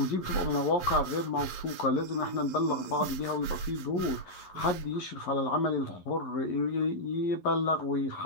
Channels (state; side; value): late; right; 11 ms